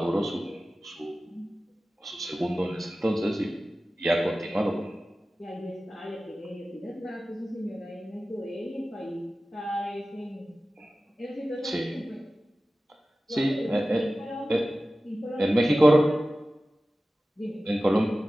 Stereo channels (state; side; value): normal; both; correlation 0.96